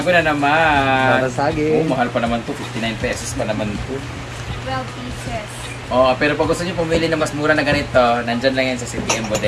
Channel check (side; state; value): both; identical; correlation 1.00